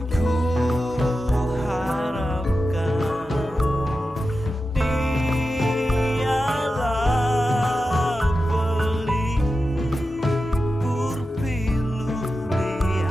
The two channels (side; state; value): both; normal; correlation 0.91